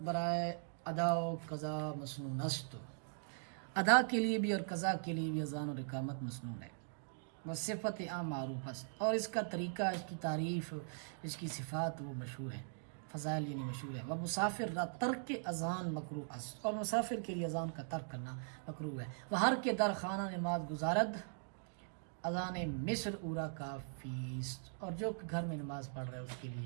برائے ادا و قضا مسنون است، ادا کے لیے بھی اور قضا کے لیے بھی اذان اور اقامت مسنون ہے۔ بس صفت عام معروف است، اور اس کا طریقہ، اس کی تعریف، اس کی صفات وہ مشہور ہیں، فضائل یعنی مشہور ہے۔ وہ مسافر را ترک اذان مکروہ است، اور مسافر کے لیے اذان کا ترک کرنا مکروہ ہے۔ وہ ہر کے در خانہ نماز گزارد اذان مصر اورا کافی است، اور جو گھر میں نماز پڑھ رہا ہے اس کے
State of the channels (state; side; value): silent; left; digital silence